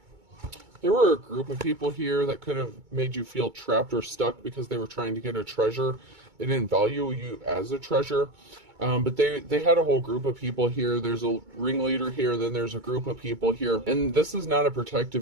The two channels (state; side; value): late; left; 2.2 ms